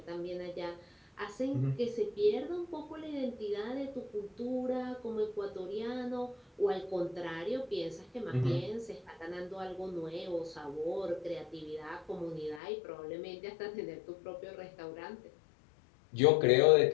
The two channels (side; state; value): right; drops out; at 12.6 s